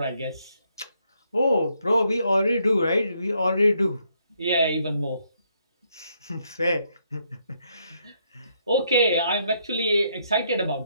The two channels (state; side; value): inverted; both; correlation -0.74